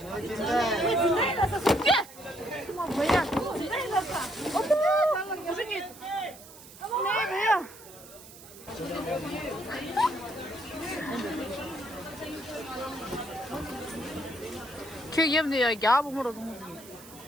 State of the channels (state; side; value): noise; right; hiss, 18 dB below the sound